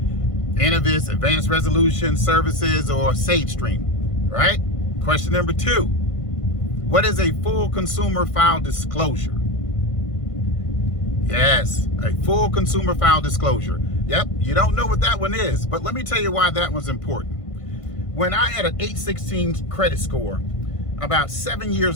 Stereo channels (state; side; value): late; right; 1.5 ms